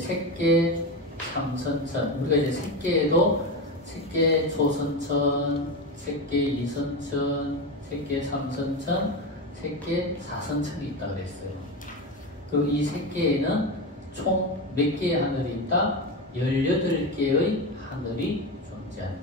삼선천. 우리가 이제 색계에도 색계 초선천, 색계 이선천, 색계 삼선천, 색계 사선천이 있다 그랬어요. 그럼 이 색계에는 총 몇 개의 하늘이 있다? 18개의 하늘이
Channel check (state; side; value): normal; both; correlation 0.18